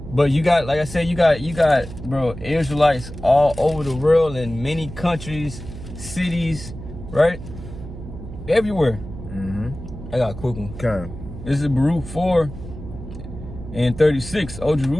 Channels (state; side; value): noise; right; hum, 12 dB below the sound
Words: but you got, like I said, you got bro, Israelites all over the world in many countries, cities, right, everywhere. I got a quick one. Okay. This is Baruch 4:36. O